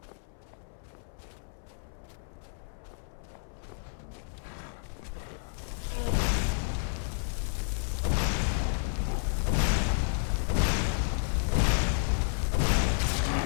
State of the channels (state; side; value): silent; right; 57 dB below the other